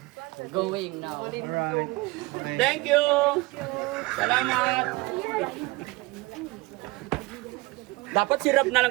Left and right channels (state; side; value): quieter; left; 23.1 dB